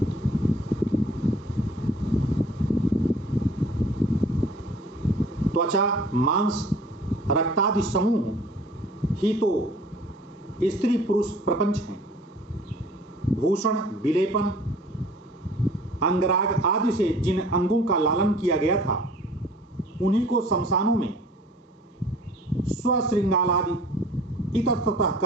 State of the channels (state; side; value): normal; both; correlation 0.50